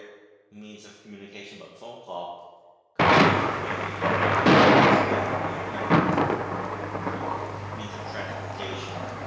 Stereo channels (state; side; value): identical; both; correlation 1.00